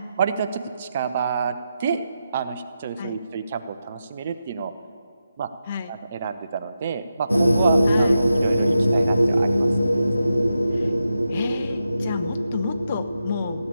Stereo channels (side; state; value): both; inverted; correlation -0.88